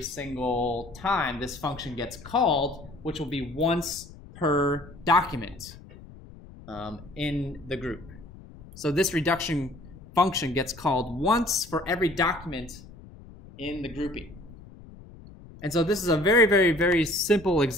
single time this function gets called, which will be once per document in the group. So this reduction function gets called once for every document in the grouping. And so this is a very, very, very simple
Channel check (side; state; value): left; noise; rumble, 19 dB below the sound